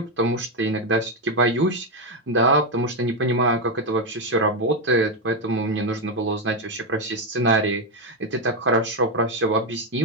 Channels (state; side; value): normal; both; correlation 0.06